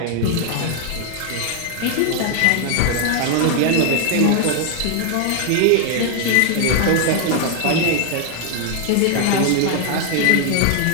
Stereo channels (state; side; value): different; both; correlation 0.00